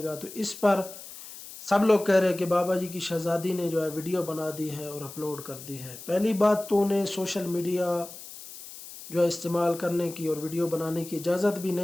तो इस पर सब लोग कह रहे हैं कि बाबा जी की शहज़ादी ने जो है वीडियो बना दी है और अपलोड कर दी है। पहली बात तो उन्हें सोशल मीडिया जो है इस्तेमाल करने की और वीडियो बनाने की इजाज़त भी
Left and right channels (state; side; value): noise; left; hiss, 14 dB below the sound